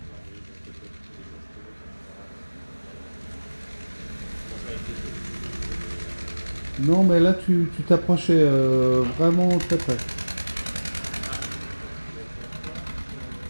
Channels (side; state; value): both; inverted; correlation -1.00